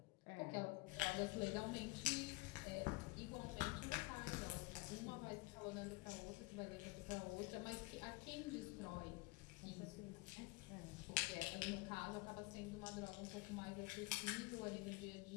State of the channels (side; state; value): right; quieter; 22.9 dB